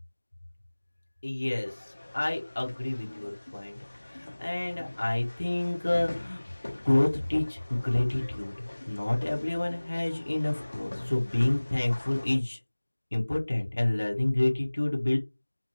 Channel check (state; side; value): inverted; both; correlation -1.00